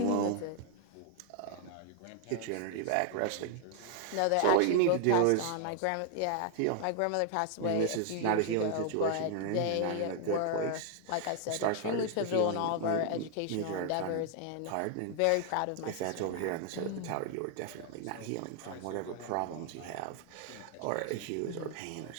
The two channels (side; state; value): both; different; correlation 0.00